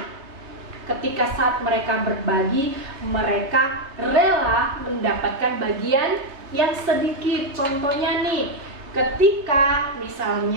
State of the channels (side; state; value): left; late; 3.3 ms